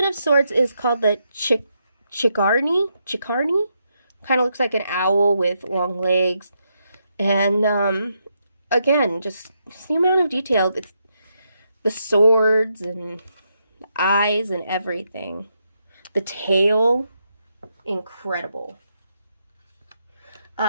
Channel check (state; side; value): inverted; both; correlation -0.81